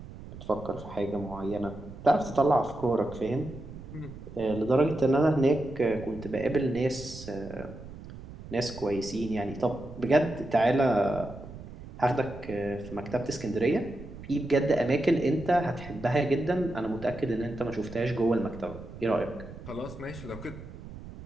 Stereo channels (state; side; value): noise; right; rumble, 14 dB below the sound